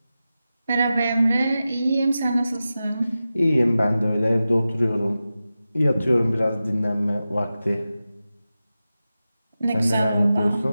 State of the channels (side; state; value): both; inverted; correlation -0.93